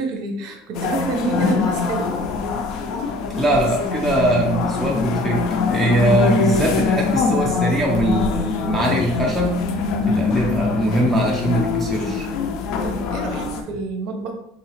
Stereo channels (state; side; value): normal; both; correlation 0.53